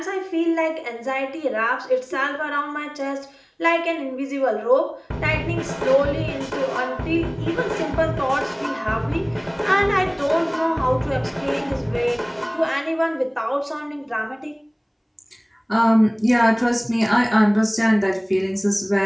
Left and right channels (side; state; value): both; identical; correlation 1.00